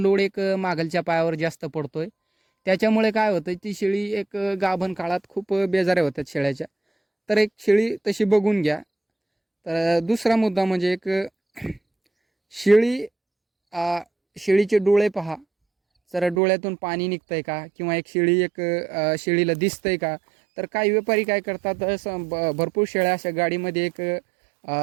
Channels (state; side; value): drops out; left; at 16.4 s